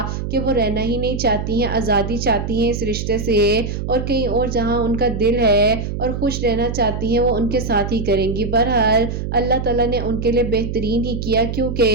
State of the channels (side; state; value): right; noise; hum, 4 dB below the sound